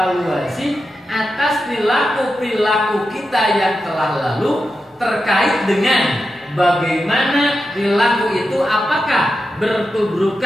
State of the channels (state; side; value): normal; both; correlation 0.89